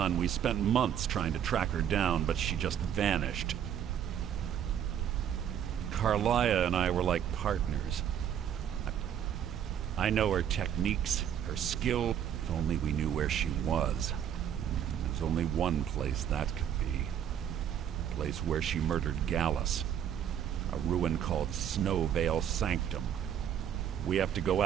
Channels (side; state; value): left; quieter; 9.4 dB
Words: we spent months trying to track her down, but she just vanished. Carlia and I were like partners. I know her techniques, her skill. If only we knew where she was. There's only one place that could be. The place where she murdered Gallus. A ruin called Snowvale Sanctum. We have to go